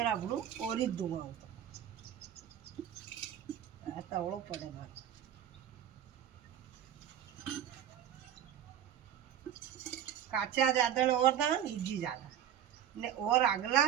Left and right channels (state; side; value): quieter; left; 10.0 dB